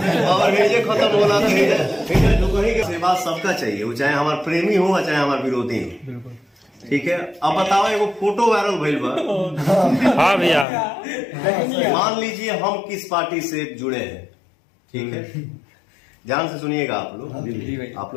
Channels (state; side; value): drops out; right; at 10.7 s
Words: पावर भेजे खत्म होला तो कहीं के सेवा सबका चाहिए, वो चाहे हमारा प्रेमी हो चाहे हमारा विरोधी हो। ठीक है, अब बताओ एगो फोटो वायरल भइल बा। हाँ भैया, मान लीजिए हम किस पार्टी से जुड़े हैं, ठीक है, ध्यान से सुनिएगा आप